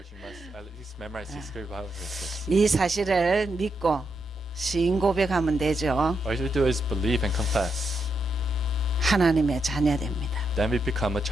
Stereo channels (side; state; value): both; normal; correlation 0.82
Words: you must at least memorize these three Bible verses. 이 사실을 믿고 시인 고백하면 되죠. All you do is believe and confess. 하나님의 자녀됩니다. Then we become a